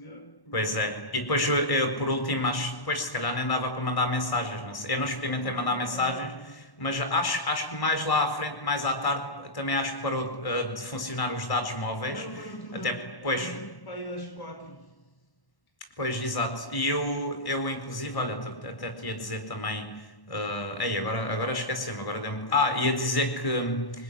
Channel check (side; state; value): right; late; 1.1 ms